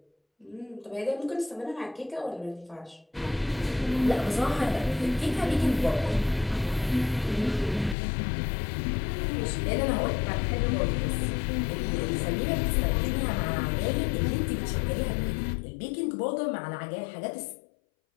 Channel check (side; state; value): right; drops out; at 8.0 s